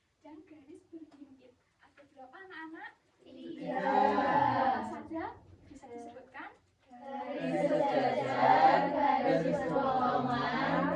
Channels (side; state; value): both; identical; correlation 1.00